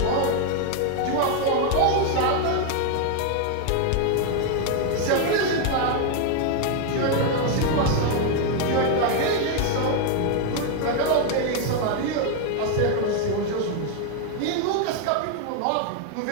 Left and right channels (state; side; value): different; both; correlation 0.01